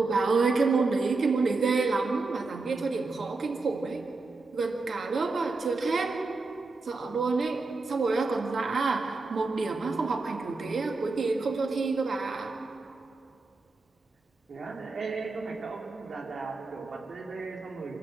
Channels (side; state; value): left; quieter; 3.7 dB